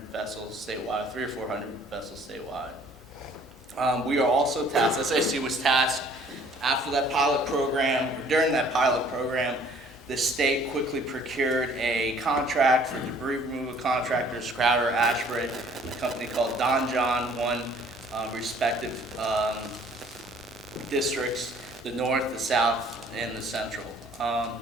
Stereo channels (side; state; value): both; normal; correlation 0.56